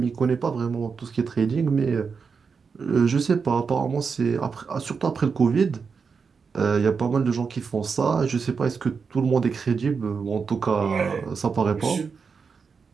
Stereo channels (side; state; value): left; quieter; 5.5 dB